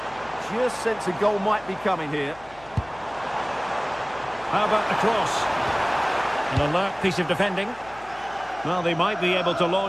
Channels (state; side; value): noise; left; hum, 24 dB below the sound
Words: Just sense a goal might be coming here. How about the cross? An alert piece of defending. Well, they might be able to